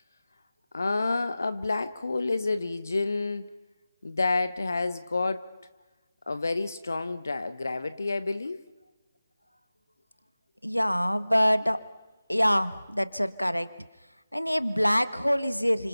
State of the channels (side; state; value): both; inverted; correlation -0.97